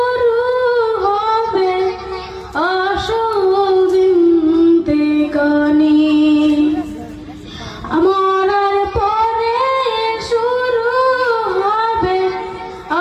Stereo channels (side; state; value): both; identical; correlation 1.00